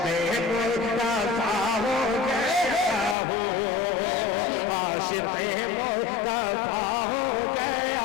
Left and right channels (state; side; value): drops out; right; at 3.2 s